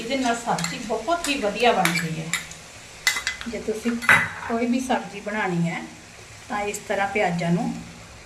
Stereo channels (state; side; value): identical; both; correlation 1.00